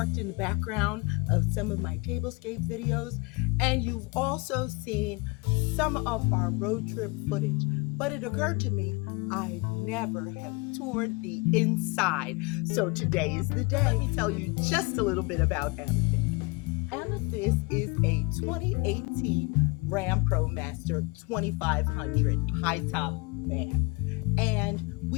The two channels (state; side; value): quieter; right; 26.8 dB